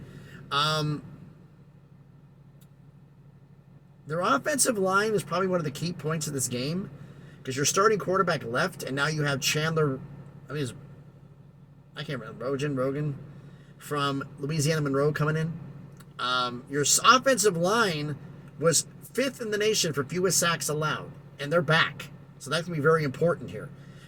Their offensive line is probably one of the key points of this game because you're starting quarterback left, and now you have Chandler, I can't remember, Rogan from Louisiana Monroe coming in. Your offensive line was 5th in the nation for fewest sacks allowed, and they're back. So that's going to be very important here.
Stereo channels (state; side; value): identical; both; correlation 1.00